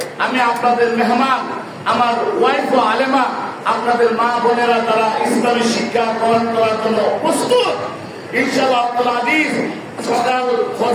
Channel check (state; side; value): identical; both; correlation 1.00